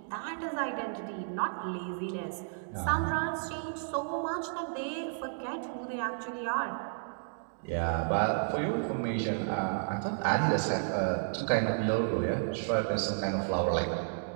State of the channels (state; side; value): silent; left; digital silence